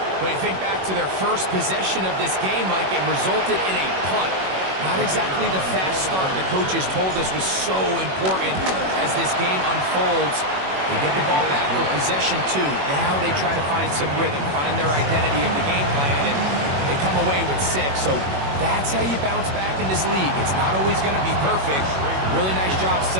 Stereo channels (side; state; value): left; late; 21 ms